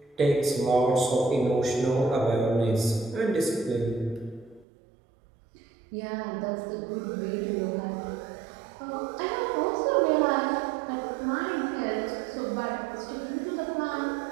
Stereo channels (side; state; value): left; drops out; at 4.7 s